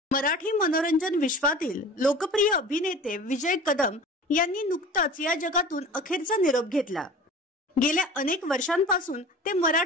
मराठी मनोरंजन विश्वातील लोकप्रिय अभिनेते विजय कदम यांनी नुकताच या जगातून अखेरचा निरोप घेतला। गेल्या अनेक वर्षांपासून ते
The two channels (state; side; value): normal; both; correlation 0.39